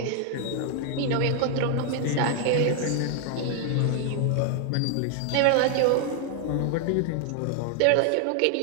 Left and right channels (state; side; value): different; both; correlation 0.00